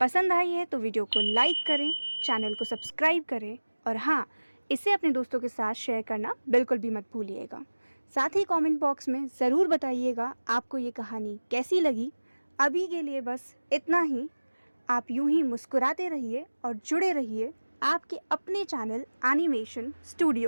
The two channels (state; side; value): inverted; both; correlation -1.00